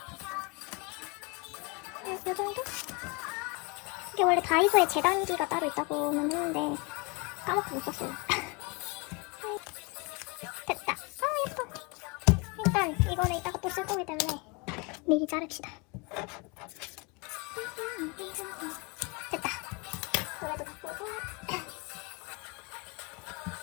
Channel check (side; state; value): right; quieter; 29.8 dB